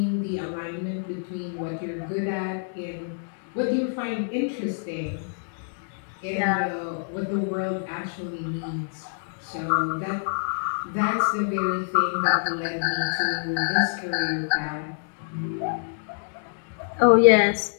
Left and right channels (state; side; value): silent; right; 61 dB below the other